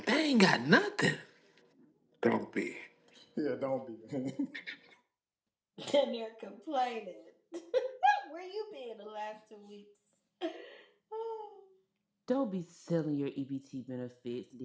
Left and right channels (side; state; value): both; identical; correlation 1.00